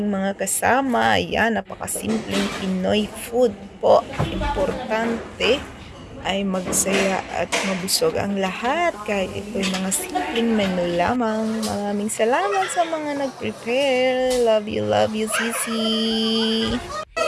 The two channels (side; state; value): both; identical; correlation 1.00